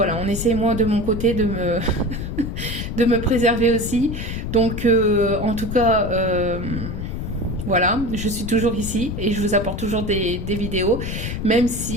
on essaie moi de mon côté de me préserver aussi. Donc en tout cas voilà, je suis toujours ici et je vous apporte toujours des vidéos, même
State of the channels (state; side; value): noise; left; rumble, 5 dB below the sound